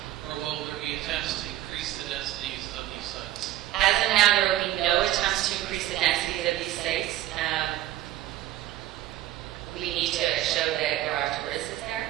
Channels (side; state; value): left; quieter; 14.0 dB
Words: or will there be attempts to increase the densities of these sites? As of now, there will be